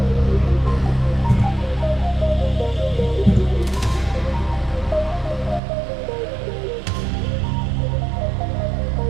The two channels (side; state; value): left; drops out; at 5.6 s